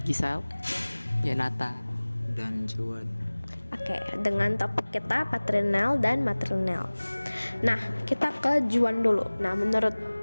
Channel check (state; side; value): inverted; both; correlation -1.00